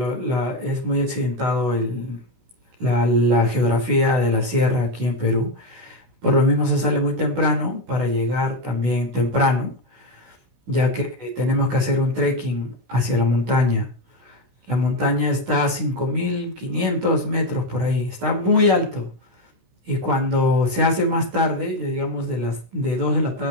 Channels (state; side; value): late; left; 16 ms